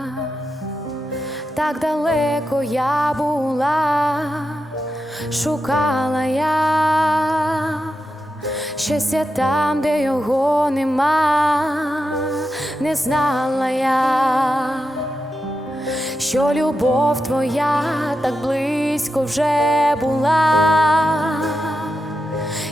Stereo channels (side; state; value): both; normal; correlation 0.88